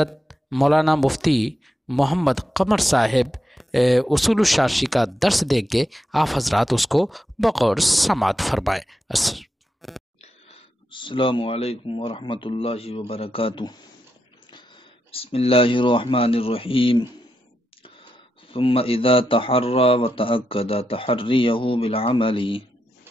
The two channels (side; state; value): both; normal; correlation 0.85